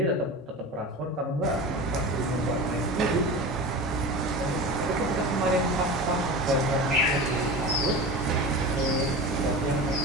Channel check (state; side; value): normal; both; correlation 0.31